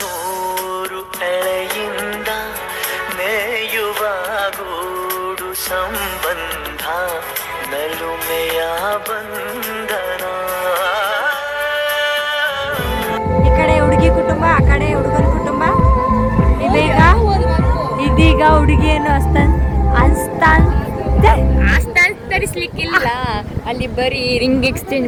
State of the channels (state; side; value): identical; both; correlation 1.00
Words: ನೂರು ಎಳೆಯಿಂದ ಮೇಯುವ ಗೂಡು ಸಂಬಂಧ ನಲುಮೆಯ ಬಂಧನ. ಈ ಕಡೆ ಹುಡುಗಿ ಕುಟುಂಬ, ಆ ಕಡೆ ಹುಡುಗನ ಕುಟುಂಬ. ಇದೀಗ ಹುಡುಗಿಯನ್ನು ತರಿಸ್ಲಿಕ್ಕಿಲ್ಲ, ಅಲ್ಲಿ ಬರೀ ರಿಂಗ್ ಎಕ್ಸ್ಚೇಂಜ್